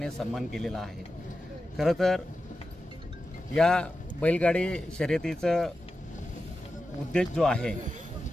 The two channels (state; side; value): normal; both; correlation 0.91